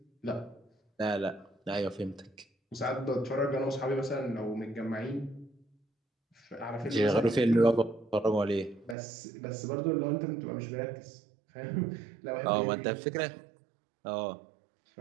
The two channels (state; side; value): drops out; left; at 9.0 s